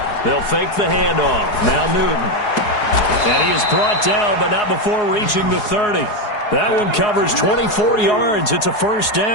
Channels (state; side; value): late; right; 4.8 ms